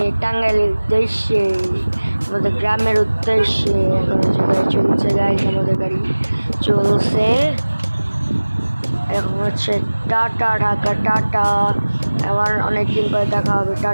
টাঙ্গাইলের উদ্দেশ্যে, আমাদের গ্রামের উদ্দেশ্যে। এখন হচ্ছে গাড়ি চলছে, গাইস আমাদের গাড়ি চলছে। এখন হচ্ছে টাটা, ঢাকা টাটা। আবার অনেকদিন পরে দেখা হবে,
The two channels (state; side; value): inverted; both; correlation -1.00